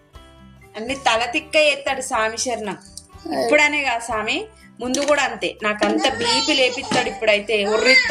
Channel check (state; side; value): identical; both; correlation 1.00